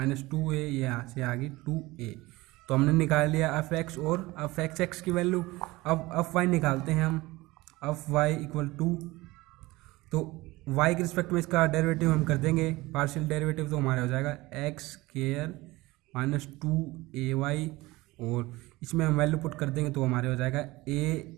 ये यहाँ से आ गई 2a। तो हमने निकाल लिया f(x) और f(x)(x) की वैल्यू। अब f(y) निकालते हैं हम, f(y) इक्वल टू, तो y के रिस्पेक्ट में इसका डेरिवेटिव हम कर देंगे पार्शियल डेरिवेटिव, तो हमारा हो जाएगा x² -2ay, और इसमें हम वैल्यू पुट कर देंगे तो हमारे हो जाएगा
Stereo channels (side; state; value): left; quieter; 20.5 dB